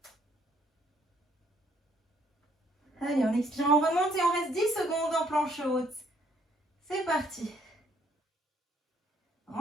Allez, en expirant, on remonte et on reste 10 secondes en planche haute. C'est parti.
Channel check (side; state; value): both; normal; correlation 0.66